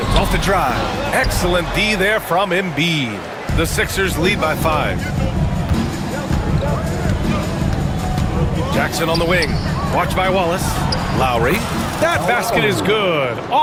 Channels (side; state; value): both; identical; correlation 1.00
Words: off the drive. Excellent D there from Embiid. The Sixers lead by 5. Jackson on the wing. Watched by Wallace. Lowry. That basket is good.